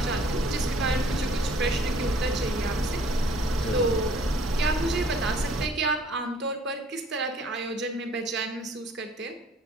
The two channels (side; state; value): both; normal; correlation 0.56